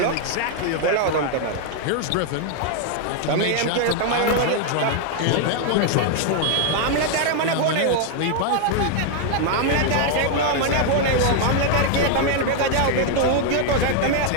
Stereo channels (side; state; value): both; different; correlation 0.00